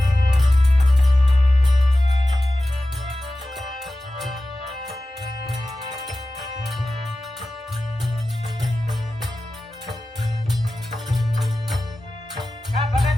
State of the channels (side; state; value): both; normal; correlation 0.94